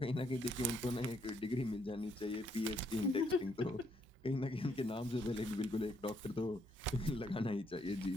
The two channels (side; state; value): both; normal; correlation 0.72